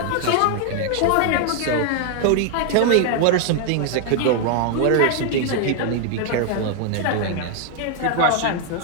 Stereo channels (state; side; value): different; both; correlation 0.00